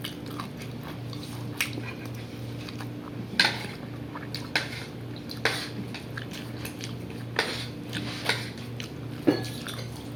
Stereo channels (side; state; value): left; noise; rumble, 25 dB below the sound